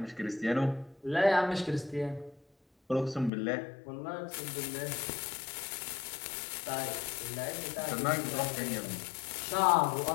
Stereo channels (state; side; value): drops out; right; at 3.3 s